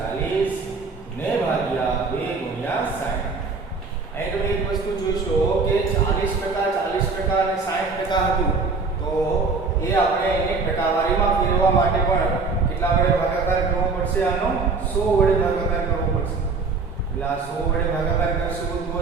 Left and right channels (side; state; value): left; quieter; 4.3 dB